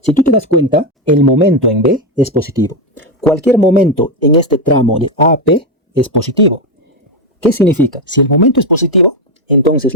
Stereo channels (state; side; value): normal; both; correlation 0.08